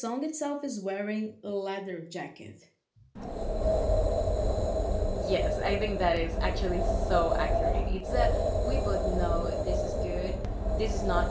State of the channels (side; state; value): both; identical; correlation 1.00